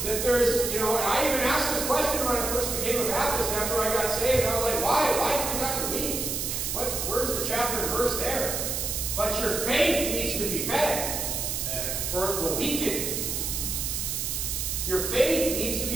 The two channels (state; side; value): noise; right; hiss, 2 dB below the sound